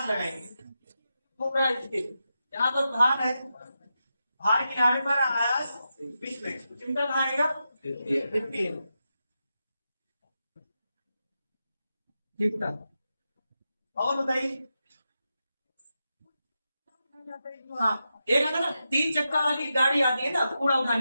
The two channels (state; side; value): inverted; both; correlation -0.88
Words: लगाएंगे, घूम रहा है इसके, यहाँ पर भार है, भार किनारे पर आयास बीच में, चिमटा कहाँ आएगा? चिमटा। और बताइए। हाँ एक है ना तीन चक्का वाली गाड़ी आती है ना, कूड़ा